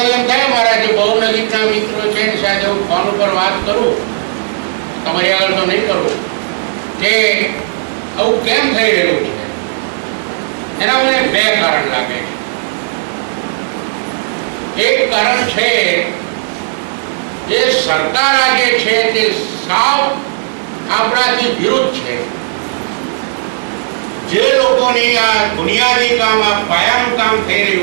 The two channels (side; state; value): left; silent; digital silence